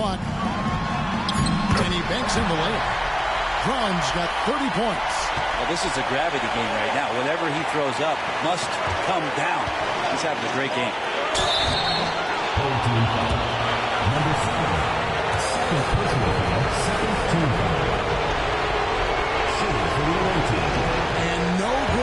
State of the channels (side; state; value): both; identical; correlation 1.00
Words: And he banks in the layup. Brown's got 30 points. Well, this is a gravity game right now. Whatever he throws up must come down. He's having a great game. Number 7. Second personal foul. Second team foul. Shooting for the away team. And no